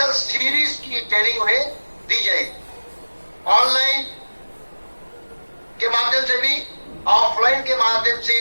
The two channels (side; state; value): both; inverted; correlation -1.00